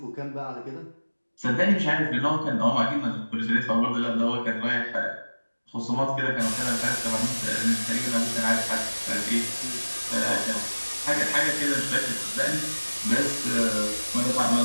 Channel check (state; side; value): inverted; both; correlation -1.00